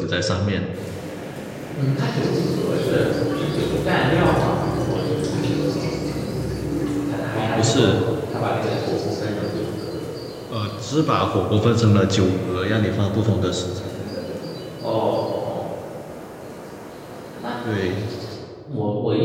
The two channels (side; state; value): both; identical; correlation 1.00